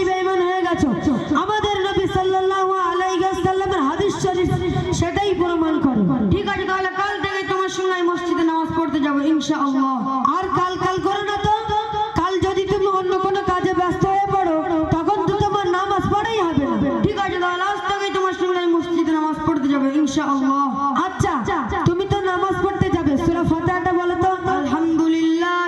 বেঈমান হয়ে গেছো। আমাদের নবী সাল্লাল্লাহু আলাইহি ওয়াসাল্লামের হাদিস শরীফ সেটাই প্রমাণ করে। ঠিক আছে, তাহলে কাল থেকে তোমার সঙ্গে আমি মসজিদে নামাজ পড়তে যাবো ইনশাআল্লাহ। আর কাল করো না তো। কাল যদি তুমি অন্য কোনো কাজে ব্যস্ত হয়ে পড়ো, তখন তো তোমার নামাজ পড়াই হবে না। ঠিক আছে, তাহলে আজ থেকে তোমার সঙ্গে আমি মসজিদে নামাজ পড়তে যাবো ইনশাআল্লাহ। আচ্ছা, তুমি তো নামাজ পড়তে যাবে, সূরা ফাতিহাটা বলো তো।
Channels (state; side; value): identical; both; correlation 1.00